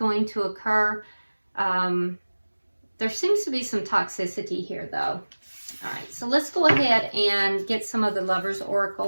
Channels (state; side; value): inverted; both; correlation -1.00